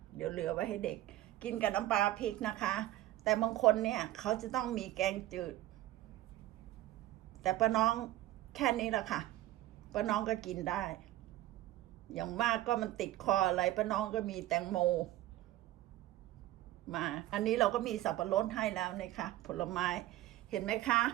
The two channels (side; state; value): left; quieter; 15.5 dB